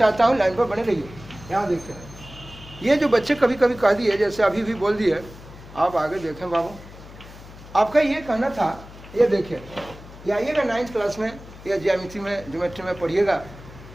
हूँ, लाइन पर बने रहिए। यहाँ देखिए, ये जो बच्चे कभी कभी कह दिए, जैसे अभी भी बोल दिए, आप आगे देखें बाबू। आपका ये कहना था, ये देखिए, ये आइएगा 9th क्लास में या ज्यामिति में, ज्योमेट्री में पढ़िएगा।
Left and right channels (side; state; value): left; noise; hum, 18 dB below the sound